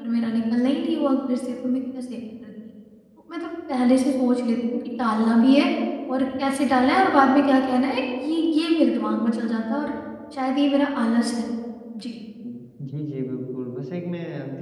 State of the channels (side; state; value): both; identical; correlation 1.00